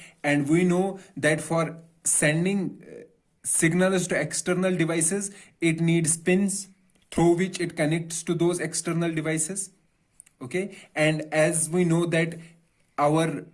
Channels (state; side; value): identical; both; correlation 1.00